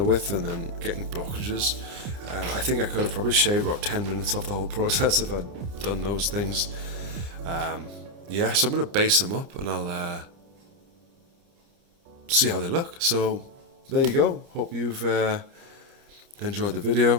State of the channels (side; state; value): left; late; 29 ms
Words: and then getting blockages. I think I could have probably shaved about 10 minutes off the whole process if I'd done those things. Yeah, so I'm going to base them up and I'll see how they look. So there you go. Hope you've enjoyed the